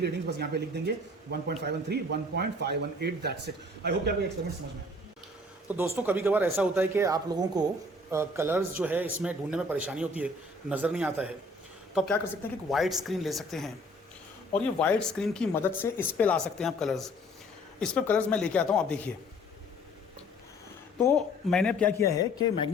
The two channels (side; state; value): both; normal; correlation 0.55